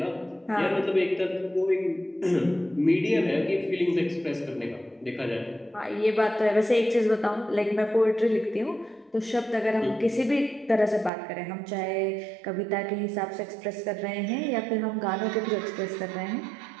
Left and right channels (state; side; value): drops out; left; at 11.1 s